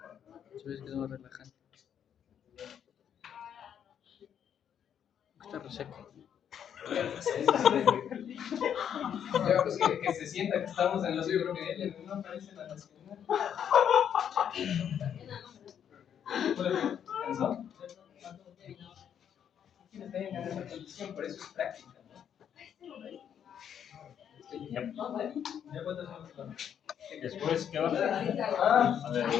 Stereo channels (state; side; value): quieter; right; 8.8 dB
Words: Subes que no relajante. Está reseco. Ya, pues que se sienta que estamos en los UPL, no aparece la nacional. ¿Cansó? Está en esa condición, por eso es práctica. Después, ¿qué va a hacer? Ah, A ver,